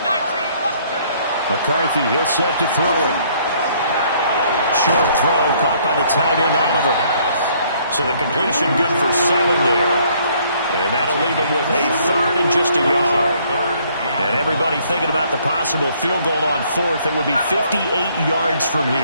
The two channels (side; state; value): both; inverted; correlation -0.64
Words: McCarthy, he'll set to throw it. Short throw caught by the tight end, Oliver. So the completion good for 7 there. And that'll leave him with a 3rd and just a yard. And everybody thinking about the possible field goal on 4th. It would be 58 yards from